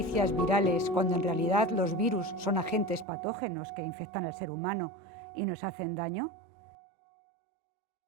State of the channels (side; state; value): left; drops out; at 3.1 s